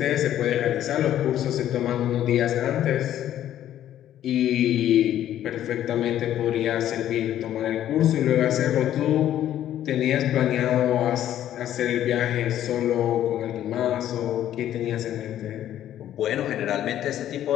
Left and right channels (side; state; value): right; quieter; 11.7 dB